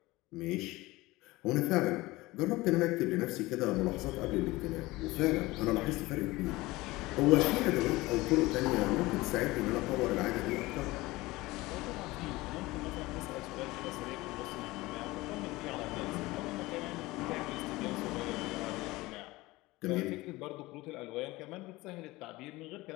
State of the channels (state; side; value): quieter; right; 20.2 dB